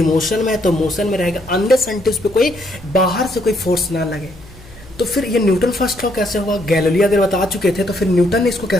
मोशन में है तो मोशन में रहेगा, अनलेस अनटिल उस पर कोई बाहर से कोई फोर्स ना लगे। तो फिर ये न्यूटन फर्स्ट लॉ कैसे हुआ? गैलीलियो अगर बता चुके थे तो फिर न्यूटन ने इसको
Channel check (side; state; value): left; noise; hum, 21 dB below the sound